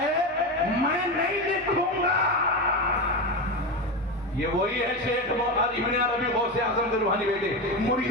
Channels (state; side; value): normal; both; correlation 0.17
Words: میں نہیں لکھوں گا۔ یہ وہی ہے شیخ ابن عربی غوث اعظم کے روحانی بیٹے۔